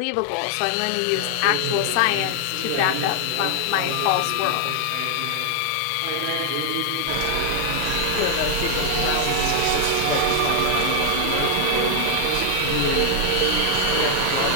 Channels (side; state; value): both; different; correlation 0.00